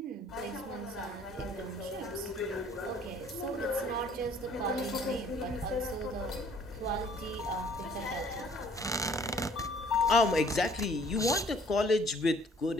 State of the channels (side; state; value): both; normal; correlation 0.57